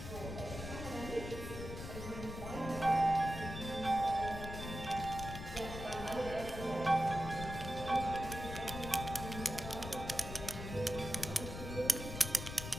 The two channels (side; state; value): left; noise; rumble, 8 dB below the sound